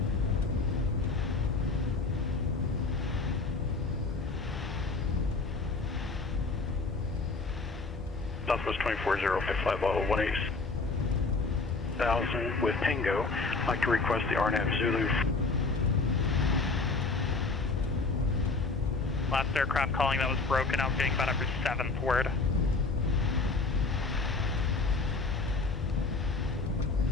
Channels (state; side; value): quieter; right; 3.9 dB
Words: Southwest 24055 level 180,000 with Tango. I'd like to request the RNAV Zulu. Last aircraft calling that was broken out, getting about every 7th word.